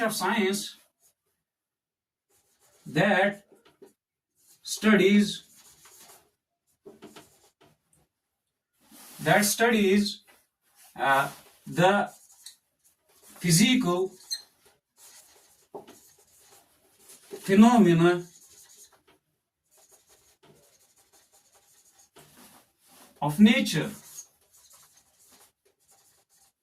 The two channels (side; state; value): both; identical; correlation 1.00